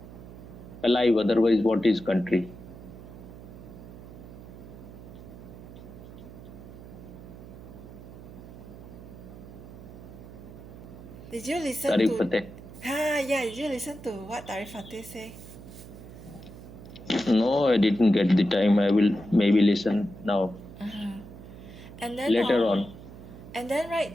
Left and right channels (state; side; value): noise; right; hum, 15 dB below the sound